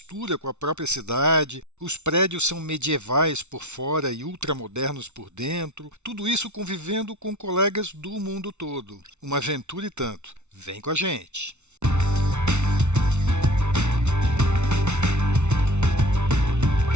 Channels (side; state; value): left; late; 0.82 ms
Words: com a própria cidade, os prédios são medievais por fora e ultramodernos por dentro, tudo isso convivendo com colegas do mundo todo. Uma aventura e tanto. Vem com a gente!